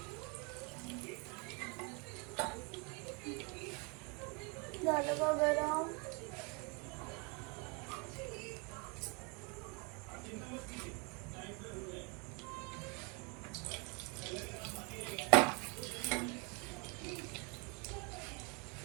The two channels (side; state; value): left; quieter; 32.3 dB